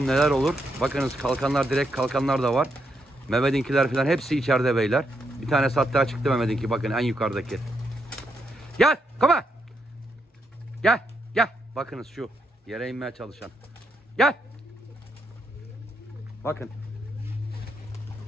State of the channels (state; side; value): normal; both; correlation 0.80